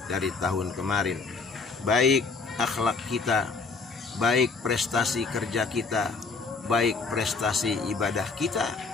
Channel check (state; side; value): quieter; right; 4.4 dB